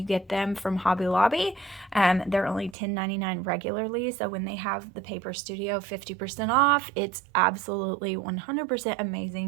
get them from Hobby Lobby. They're only $10.99 regularly, so when they have the Paper Studio 50% off, it's absolutely 100%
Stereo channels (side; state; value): left; drops out; at 2.8 s